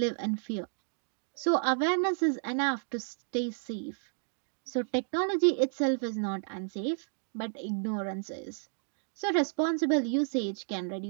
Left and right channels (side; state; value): left; silent; digital silence